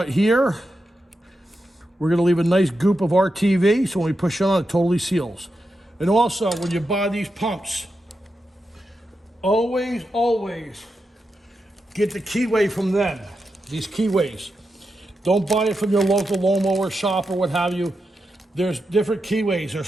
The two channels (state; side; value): normal; both; correlation 0.88